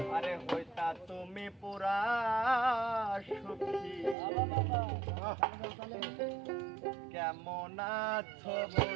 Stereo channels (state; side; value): drops out; left; at 4.2 s